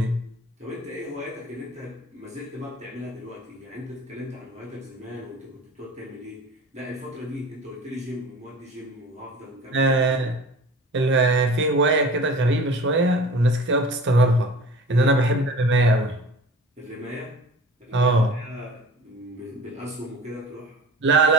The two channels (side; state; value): both; normal; correlation 0.41